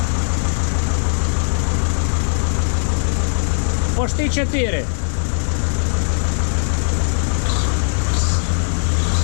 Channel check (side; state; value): right; silent; digital silence